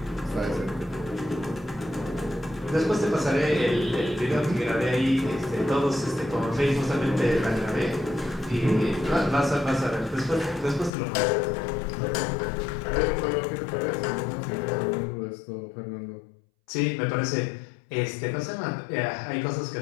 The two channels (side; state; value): right; drops out; at 10.9 s